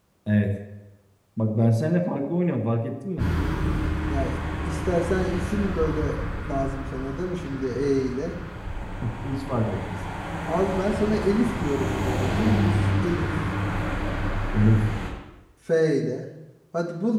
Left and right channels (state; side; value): identical; both; correlation 1.00